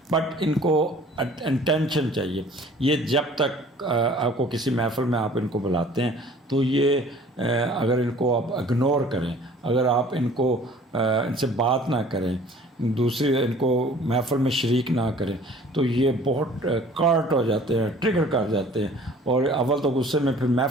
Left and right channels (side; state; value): both; normal; correlation 0.50